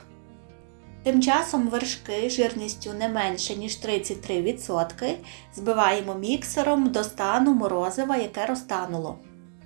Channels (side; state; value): left; silent; digital silence